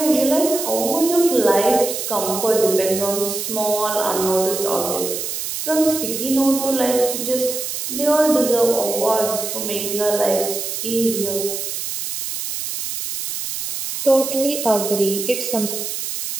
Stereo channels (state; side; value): noise; right; hiss, 5 dB below the sound